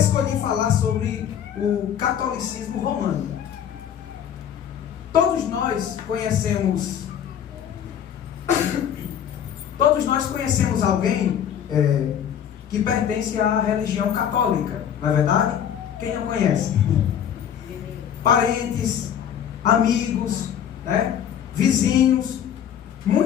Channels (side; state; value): right; quieter; 9.1 dB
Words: falar sobre o catolicismo romano. Todos nós conhecemos alguém que pertence à religião católica, não é verdade? Quem não conhece? Parentes, amigos, vizinhos.